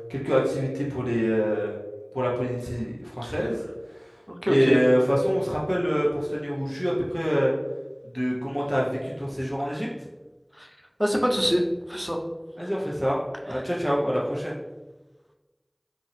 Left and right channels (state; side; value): identical; both; correlation 1.00